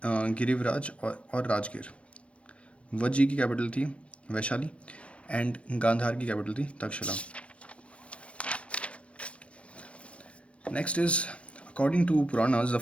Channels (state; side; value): late; right; 0.061 ms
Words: गिरिवराज और राजगीर. वज्जी की कैपिटल थी वैशाली एंड गांधार की कैपिटल थी Takshashila. Next is, according to Puranas, the